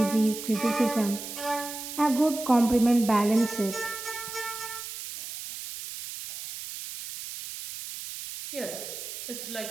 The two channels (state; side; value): noise; right; hiss, 9 dB below the sound